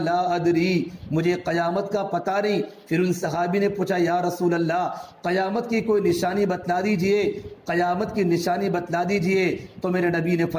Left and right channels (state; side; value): identical; both; correlation 1.00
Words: ادری، مجھے قیامت کا پتہ نہیں۔ پھر ان صحابی نے پوچھا یا رسول اللہ قیامت کی کوئی نشانی بتلا دیجئے، قیامت کی نشانی بتلا دیجئے۔ تو میرے نبی نے